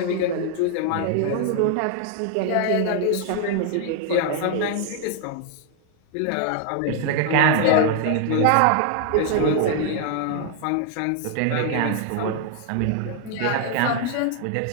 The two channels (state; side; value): different; both; correlation 0.00